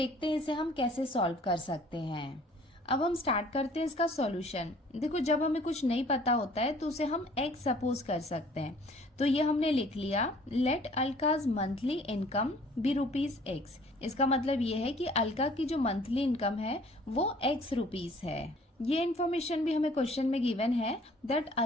हैं इसे हम कैसे सॉल्व कर सकते हैं। अब हम स्टार्ट करते हैं इसका सॉल्यूशन। देखो जब हमें कुछ नहीं पता होता है तो उसे हम एक्स सपोज कर सकते हैं। तो ये हमने लिख लिया, लेट अलकाज मंथली इनकम बी ₹X। इसका मतलब ये है कि अलका की जो मंथली इनकम है वो X रुपीज है। ये इन्फॉर्मेशन भी हमें क्वेश्चन में गिवन है that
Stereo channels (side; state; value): both; normal; correlation 0.54